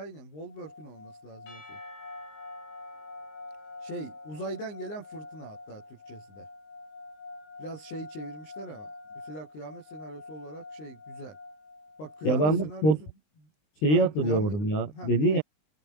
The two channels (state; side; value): late; right; 20 ms